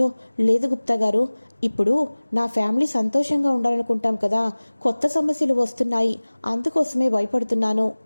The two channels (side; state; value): both; inverted; correlation -1.00